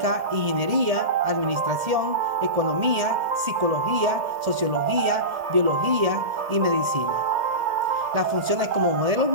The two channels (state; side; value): late; left; 1.7 ms